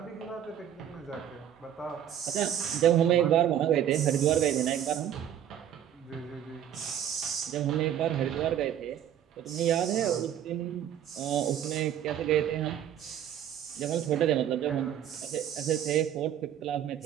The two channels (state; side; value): quieter; left; 10.1 dB